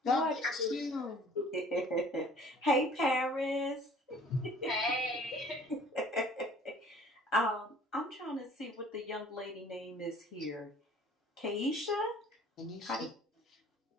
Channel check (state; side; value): normal; both; correlation 0.52